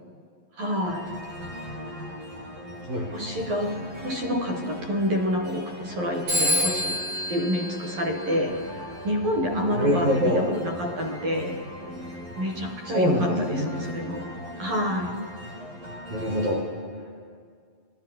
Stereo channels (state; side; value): late; left; 11 ms